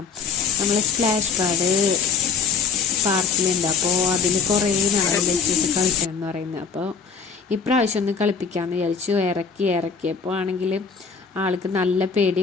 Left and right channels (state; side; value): quieter; right; 5.7 dB